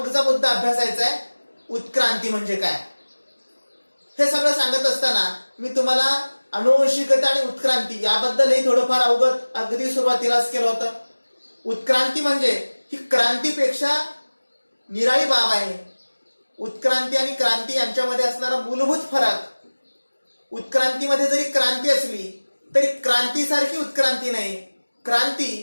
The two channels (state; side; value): inverted; both; correlation -1.00